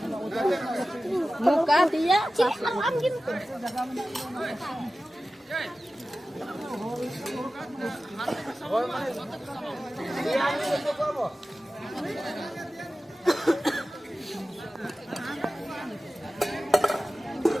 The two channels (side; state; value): both; normal; correlation 0.95